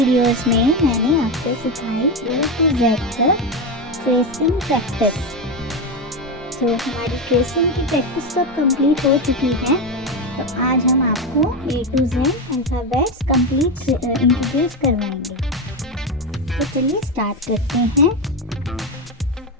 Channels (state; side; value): normal; both; correlation 0.13